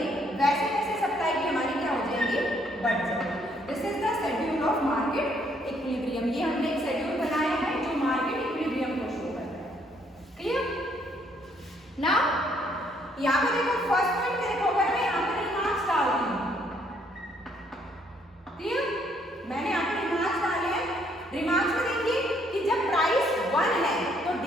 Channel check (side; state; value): both; normal; correlation 0.68